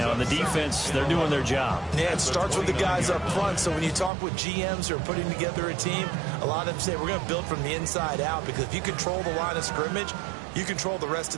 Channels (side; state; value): left; drops out; at 4.1 s